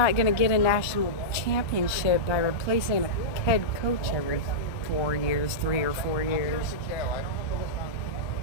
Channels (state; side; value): late; right; 1.2 ms